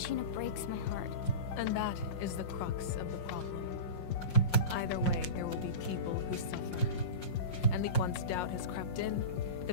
breaks my heart. And that is the crux of the problem. Either way, there will be people who suffer. And once doubt has crept in,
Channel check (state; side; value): late; right; 5.6 ms